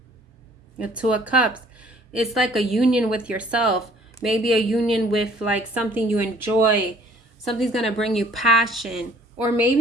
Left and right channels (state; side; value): normal; both; correlation 0.56